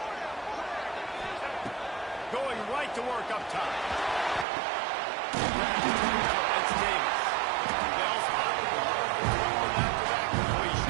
Going right to work up top. That's Davis. They'll spot the ball after that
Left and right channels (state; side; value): drops out; left; at 4.5 s